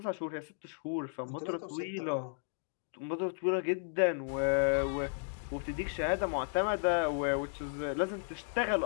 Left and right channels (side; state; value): right; silent; digital silence